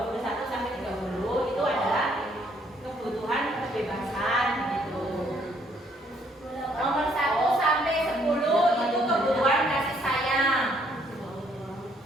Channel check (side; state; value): both; normal; correlation 0.67